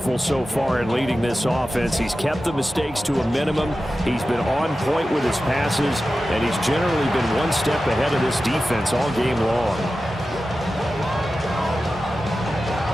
so far in leading this offense. He's kept the mistakes to a minimum. He's been on point with his passes. And he's generally been one step ahead of this defense all game long.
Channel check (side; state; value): both; normal; correlation 0.93